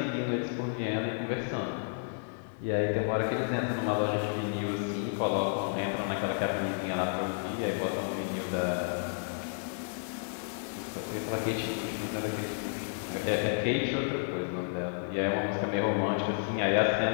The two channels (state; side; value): silent; right; 57 dB below the other